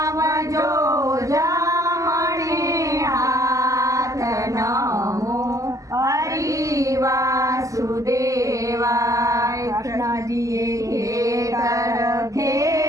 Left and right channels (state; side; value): late; left; 0.16 ms